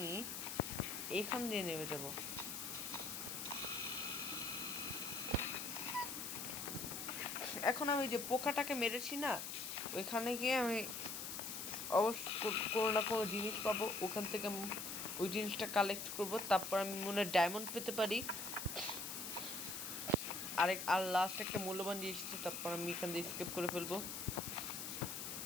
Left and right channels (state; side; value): noise; left; hiss, 5 dB below the sound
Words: এখান দিয়ে নেমে যাব। এখন আমি যে পোকাটাকে মেরেছি না, ওইখানে গিয়ে আমি অবশ্য কোনো না কোনো জিনিস পাবো, ওখান থেকে ওই জিনিসটা কালেক্ট করব, তারপর আমি মনে হয় ডায়মন্ড পেতে পারি। আর লাস্ট একটা মূল্যবান জিনিস, তারপর আমি এখান দিয়ে স্কেপ করে ফেলবো।